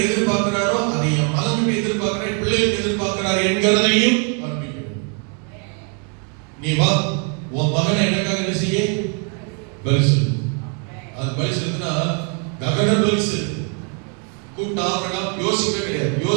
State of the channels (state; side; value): quieter; left; 38.2 dB